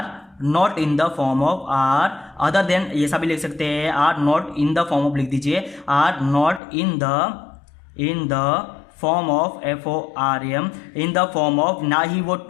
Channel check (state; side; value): drops out; right; at 6.6 s